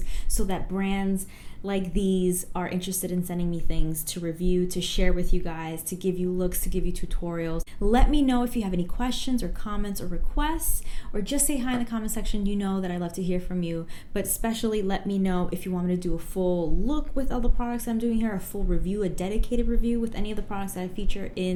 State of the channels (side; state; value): both; identical; correlation 1.00